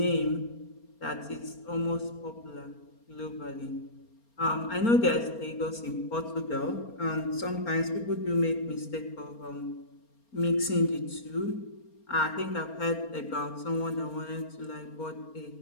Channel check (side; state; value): right; late; 4.3 ms